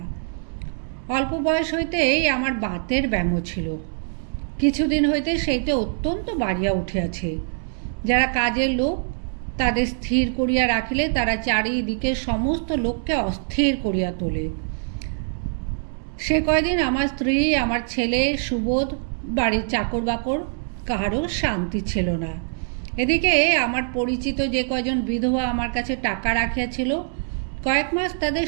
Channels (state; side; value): silent; left; digital silence